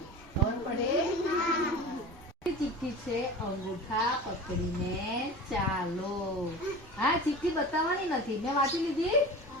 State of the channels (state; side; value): normal; both; correlation 0.34